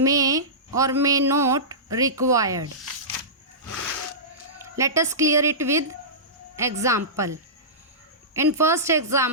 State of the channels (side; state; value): both; normal; correlation -0.19